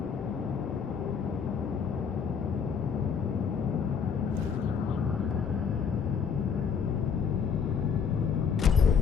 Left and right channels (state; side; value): quieter; right; 6.6 dB